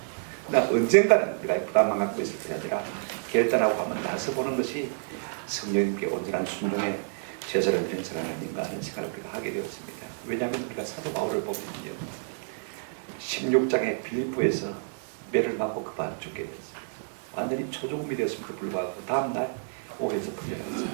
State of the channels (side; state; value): left; silent; digital silence